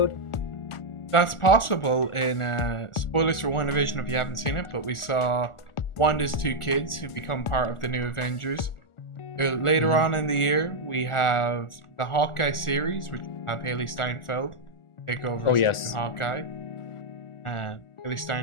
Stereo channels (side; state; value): right; late; 1.4 ms